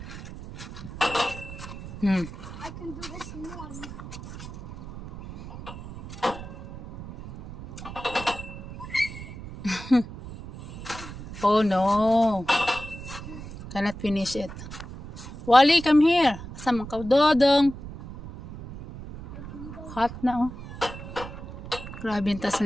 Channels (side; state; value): right; noise; rumble, 12 dB below the sound